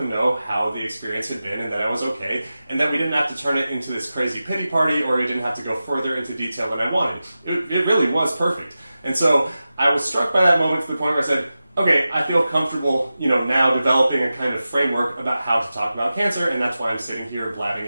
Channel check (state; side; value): inverted; both; correlation -0.94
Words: know how the experience had been and that I was okay, and that we didn't have to turn it into this crazy pity party, or we didn't have to go further into detail than I wanted. It really was perfect. And so I was struck by that moment to the point where I said, okay, I feel comfortable, now developing a kind of framework about how to talk about cancer, and that's why I'm sitting here blabbing